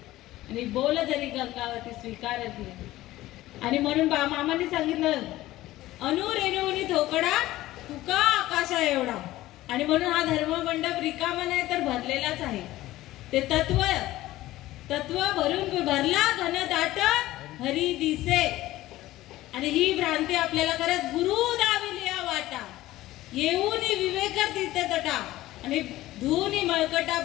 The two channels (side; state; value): right; quieter; 16.3 dB